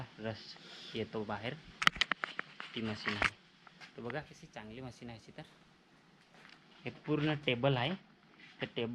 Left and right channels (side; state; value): both; identical; correlation 1.00